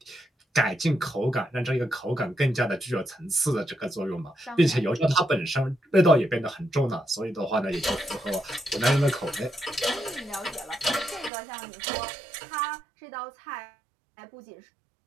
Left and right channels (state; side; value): drops out; left; at 11.3 s